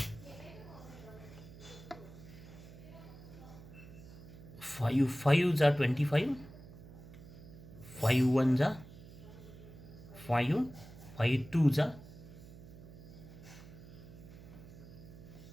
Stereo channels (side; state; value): right; noise; hum, 17 dB below the sound